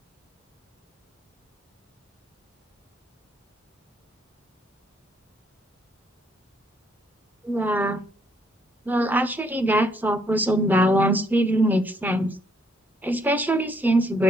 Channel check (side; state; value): both; normal; correlation 0.70